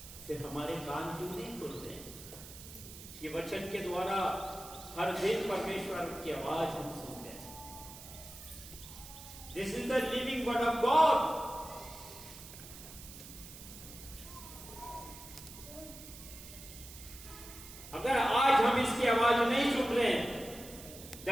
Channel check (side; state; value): right; noise; hiss, 15 dB below the sound